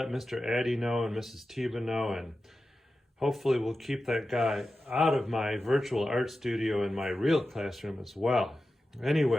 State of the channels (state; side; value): normal; both; correlation 0.93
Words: Mr. Addy know and Mrs. Tiba know, and hopefully we'll keep that guy out of my virtual art studio in my real classroom as well.